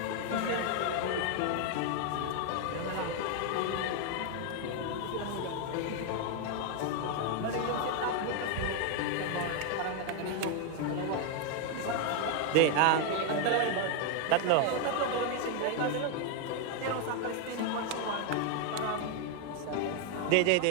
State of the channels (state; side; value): different; both; correlation 0.01